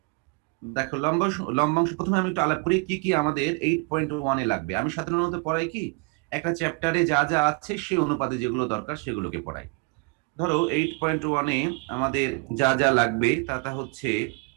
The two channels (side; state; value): left; quieter; 30.2 dB